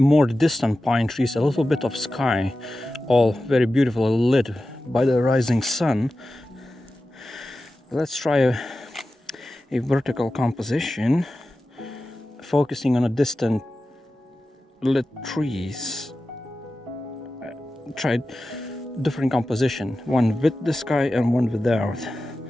distant pine trees, a little bit of sky, all very beautifully lit by the rising sun. Let's try a vertical composition, focusing on a distant lit trees. Tried different composition, one with the sky and one without.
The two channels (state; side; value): normal; both; correlation 0.94